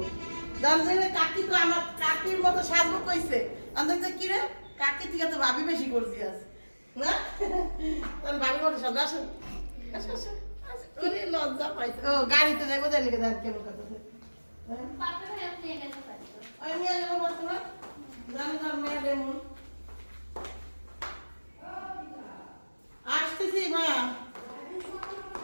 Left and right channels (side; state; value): both; inverted; correlation -1.00